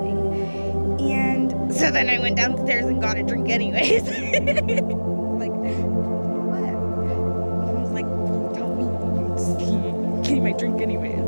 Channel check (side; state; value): both; inverted; correlation -1.00